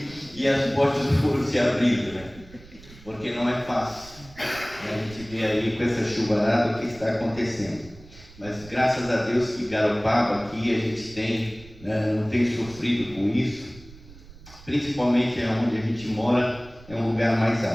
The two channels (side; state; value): right; noise; rumble, 21 dB below the sound